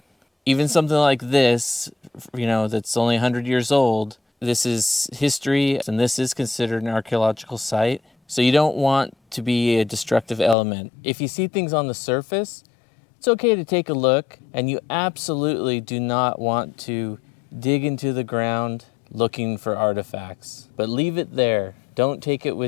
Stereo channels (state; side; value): drops out; right; at 10.6 s